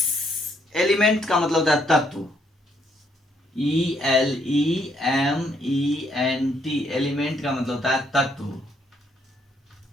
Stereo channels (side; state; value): both; normal; correlation 0.71